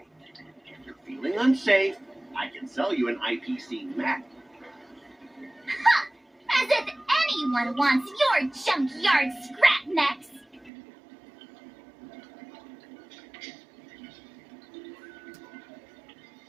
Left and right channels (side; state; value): left; drops out; at 10.7 s